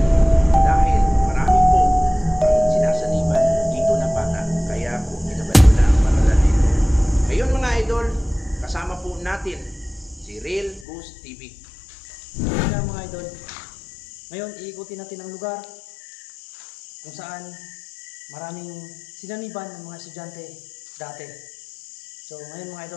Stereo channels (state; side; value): drops out; right; at 10.9 s